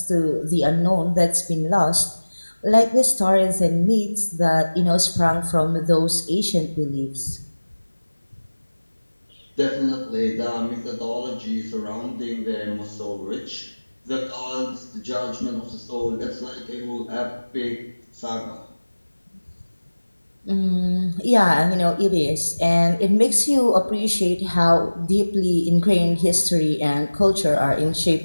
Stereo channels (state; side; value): inverted; both; correlation -1.00